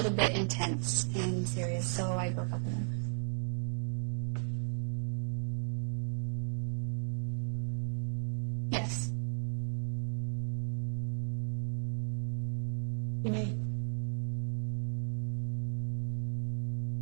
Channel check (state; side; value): silent; left; digital silence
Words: bit intense and serious, so I broke up with him. Did you Yes. You may.